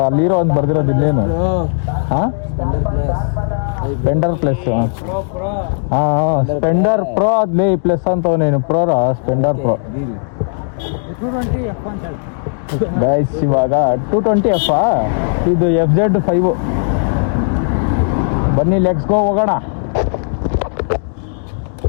ಅಲ್ಲಿ ಹೀರೋ ಅಂತ ಬರ್ದಿರೋದು ಇಲ್ಲೇನು? ಹಾಂ ಸ್ಪೆಂಡರ್ ಪ್ಲಸ್. ಹಾಂ ಸ್ಪೆಂಡರ್ ಪ್ರೋ ಅದ್ಲೇ ಪ್ಲಸ್ ಅಂತವನೇನು ಪ್ರೋರ ಸ್ಪೆಂಡರ್ ಪ್ರೋ ಗೈಸ್. ಇವಾಗ 220F ಇದು FZ 5. ಬನ್ನಿ ಲೆಟ್ಸ್ ಗೋ ಹೋಗೋಣ.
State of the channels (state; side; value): silent; right; digital silence